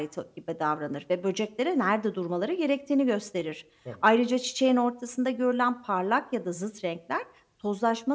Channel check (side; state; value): both; identical; correlation 1.00